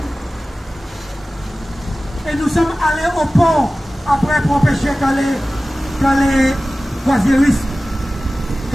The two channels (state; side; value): normal; both; correlation 0.96